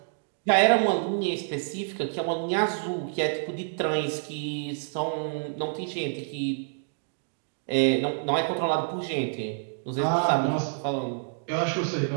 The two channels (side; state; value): left; silent; digital silence